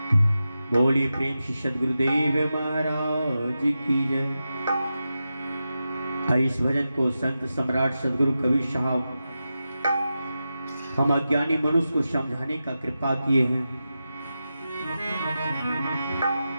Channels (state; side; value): inverted; both; correlation -0.91